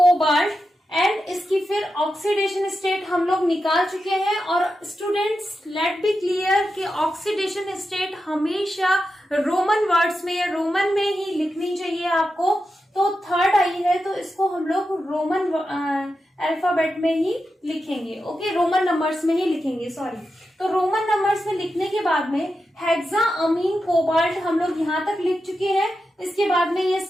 And इसकी फिर ऑक्सीडेशन स्टेट हम लोग निकाल चुके हैं। और स्टूडेंट्स, लेट बी क्लियर कि ऑक्सीडेशन स्टेट हमेशा रोमन वर्ड्स में या रोमन में ही लिखनी चाहिए आपको। तो थर्ड आई है तो इसको हम लोग रोमन अल्फाबेट में ही लिखेंगे। ओके, रोमन नंबर्स में ही लिखेंगे, सॉरी। तो रोमन नंबर्स में लिखने के बाद में हेक्सा अमीन कोबाल्ट हम लोग यहां तक लिख चुके हैं। इसके बाद में ये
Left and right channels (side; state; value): both; normal; correlation 0.89